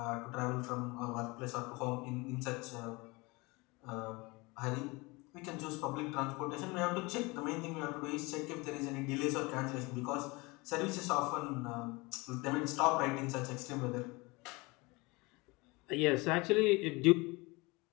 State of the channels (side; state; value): right; quieter; 24.9 dB